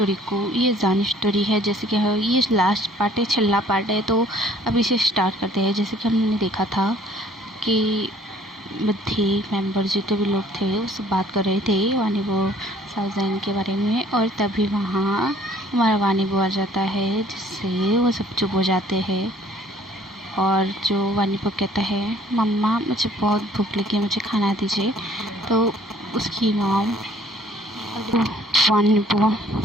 को ये जान स्टोरी है, जैसे कि ये लास्ट पार्ट है, छल्ला पार्ट है। तो अब इसे स्टार्ट करते हैं। जैसे कि हमने देखा था कि बद्धे मेंबर जितने भी लोग थे वो सब बात कर रहे थे वानी वो साउजैन के बारे में, और तभी वहाँ हमारा वानी वो आ जाता है, जिससे वो सब चुप हो जाते हैं। और जो वानी वो कहता है, मम्मा मुझे बहुत भूख लगी है, मुझे खाना दीजिए। तो उसकी मॉम वानी वो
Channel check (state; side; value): normal; both; correlation 0.57